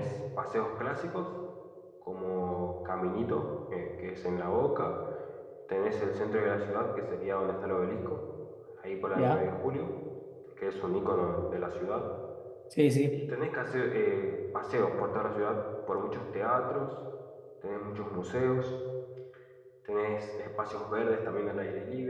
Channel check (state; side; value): identical; both; correlation 1.00